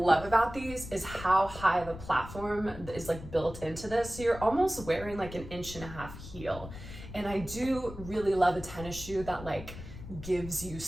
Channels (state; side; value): noise; left; rumble, 12 dB below the sound